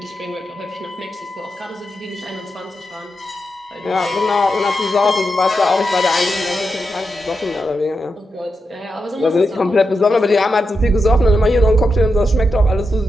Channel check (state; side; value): normal; both; correlation 0.87